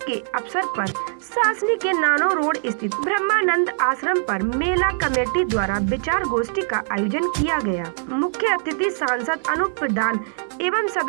अवसर पर सासनी के नानो रोड स्थित ब्रह्मानंद आश्रम पर मेला कमेटी द्वारा विचार गोष्ठी का आयोजन किया गया। मुख्य अतिथि सांसद अनूप प्रधान एवं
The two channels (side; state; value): left; silent; digital silence